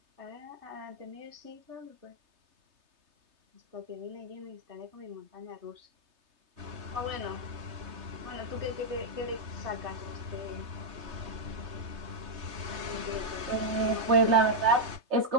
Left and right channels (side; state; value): left; late; 3.3 ms